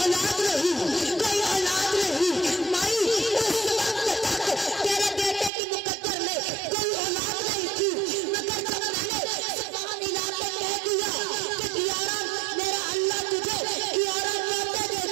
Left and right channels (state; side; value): drops out; left; at 5.5 s